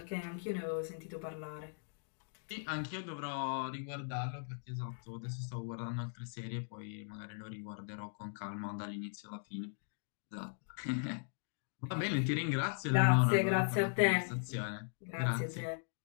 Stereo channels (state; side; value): silent; right; digital silence